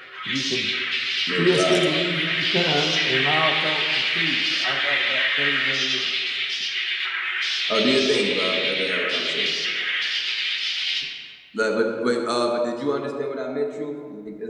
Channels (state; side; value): identical; both; correlation 1.00